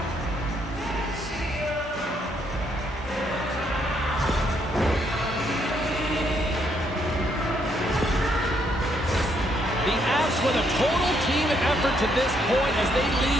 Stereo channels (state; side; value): normal; both; correlation 0.72